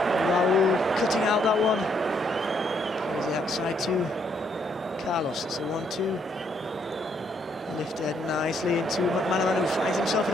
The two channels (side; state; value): both; normal; correlation 0.71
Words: Raúl cutting out that one. Plays it outside to Carlos. It's a 1-2. Lifted nicely into McManaman, who finds himself